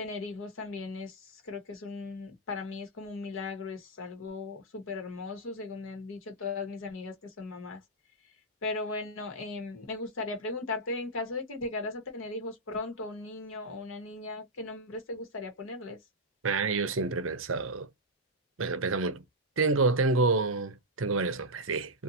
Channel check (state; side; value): normal; both; correlation -0.06